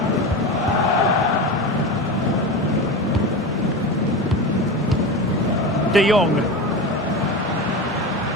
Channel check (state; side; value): normal; both; correlation 0.24